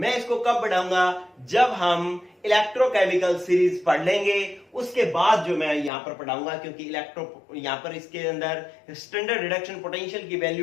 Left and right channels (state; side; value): drops out; right; at 5.9 s